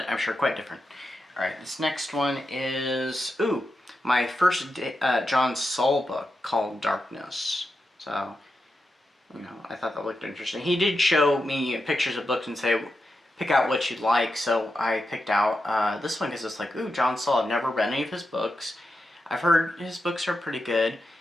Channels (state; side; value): normal; both; correlation 0.88